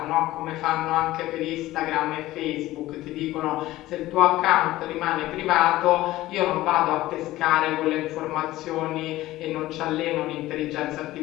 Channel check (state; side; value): quieter; right; 16.5 dB